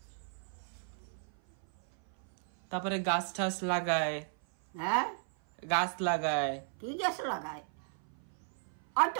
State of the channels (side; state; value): left; silent; 55 dB below the other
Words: তারপরে গাছ ঠাছ লাগায়। গাছ লাগায়। কি গাছ লাগায়? হয়তো